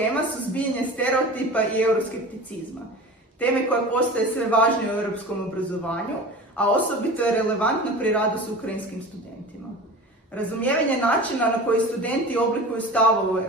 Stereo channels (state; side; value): normal; both; correlation 0.35